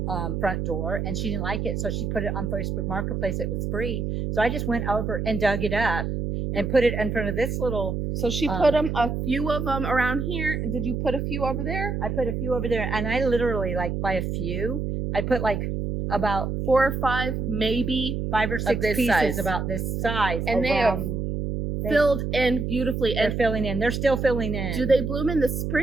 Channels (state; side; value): noise; right; hum, 2 dB below the sound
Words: front door, and she didn't like it, so she put it on Facebook Marketplace. It was free, so I just went over and dug it up and put it in front of this little. So she put a few of them around here. Did you put a few over there? I put a few over there, and I literally, like, by a few, I put like about 4 or 5, maybe 5 or 6 this pieces size. about this size, And they have filled in beautifully. They're And filling in. They're still filling in. do they bloom in the